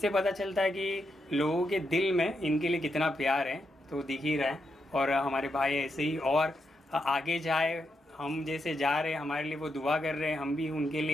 पता चलता है कि लोगों के दिल में इनके लिए कितना प्यार है, तो दिख ही रहा है। और हमारे भाई ऐसे ही और आगे जाए, हम जैसे जा रहे हैं हमारे लिए वो दुआ कर रहे हैं, हम भी उनके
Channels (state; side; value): normal; both; correlation 0.83